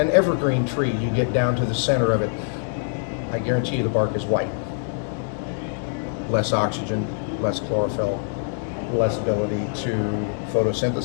evergreen tree, you get down to the center of it, I guarantee you the bark is white. Less oxygen, less chlorophyll, less ability to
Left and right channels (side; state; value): right; silent; 63 dB below the other